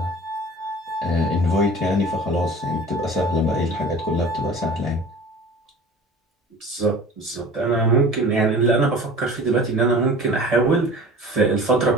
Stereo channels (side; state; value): both; normal; correlation 0.42